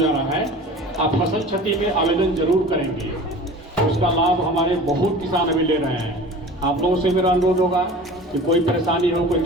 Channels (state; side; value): normal; both; correlation 0.40